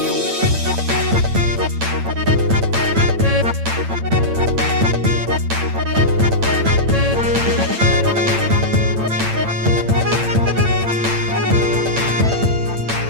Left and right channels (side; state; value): left; late; 8.9 ms